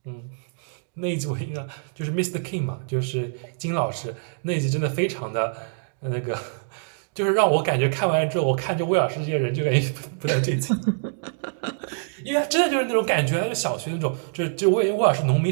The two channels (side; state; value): left; silent; digital silence